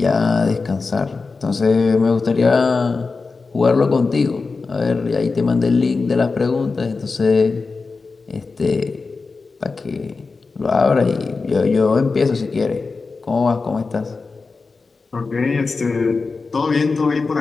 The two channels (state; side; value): quieter; right; 4.2 dB